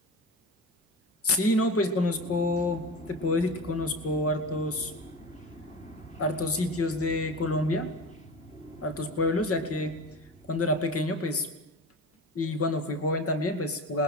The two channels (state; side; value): normal; both; correlation 0.30